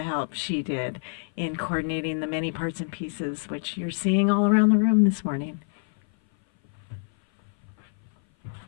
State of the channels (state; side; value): silent; right; 57 dB below the other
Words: help she did in coordinating the many parts and pieces, which you're seeing all around the room this morning.